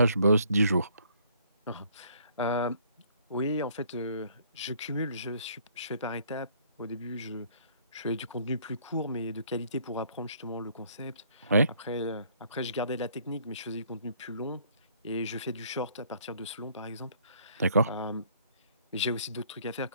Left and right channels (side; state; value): both; inverted; correlation -0.62